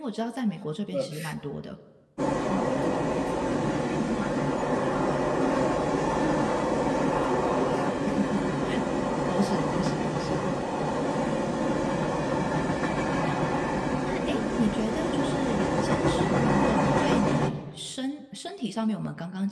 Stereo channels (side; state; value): both; identical; correlation 1.00